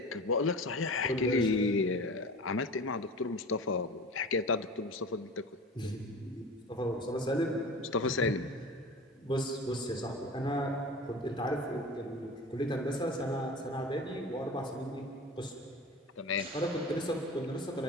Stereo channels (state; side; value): normal; both; correlation 0.35